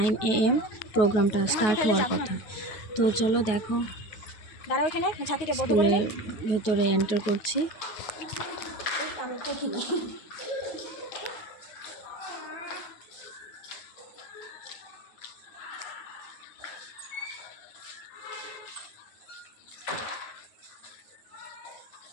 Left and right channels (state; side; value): late; right; 9.3 ms